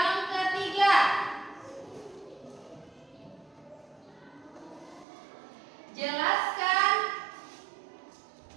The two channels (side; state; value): left; drops out; at 5.1 s